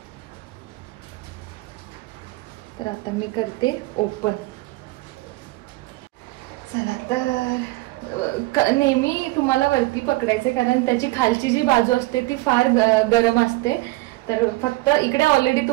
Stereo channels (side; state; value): left; quieter; 20.6 dB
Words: तर आता मी करते ओपन. चला तर नेहमी तुम्हाला वरती पकडायचे, कारण त्याची खालची जी बाजू असते ती फार गरम असते. तर फक्त इकडे ऑलरेडी